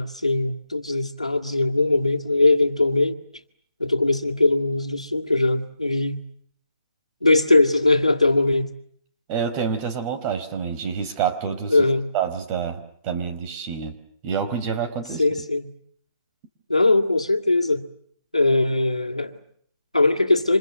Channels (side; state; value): both; inverted; correlation -0.84